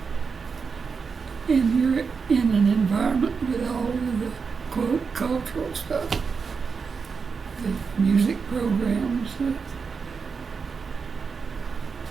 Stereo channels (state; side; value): quieter; left; 5.4 dB